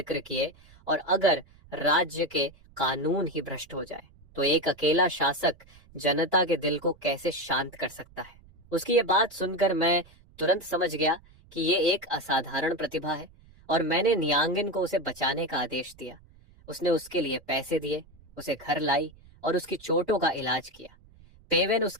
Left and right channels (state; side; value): noise; right; rumble, 26 dB below the sound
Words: किए, और अगर राज्य के कानून ही भ्रष्ट हो जाए तो एक अकेला शासक जनता के दिल को कैसे शांत कर सकता है। उसकी ये बात सुनकर मैं तुरंत समझ गया कि ये एक असाधारण प्रतिभा है और मैंने नियांगिन को उसे बचाने का आदेश दिया। उसने उसके लिए पैसे दिए, उसे घर लाई और उसकी चोटों का इलाज किया। पेवेन